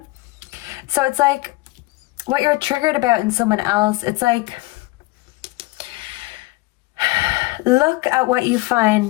So it's like what you're triggered about in someone else, it's like, look at what you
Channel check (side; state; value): right; quieter; 21.8 dB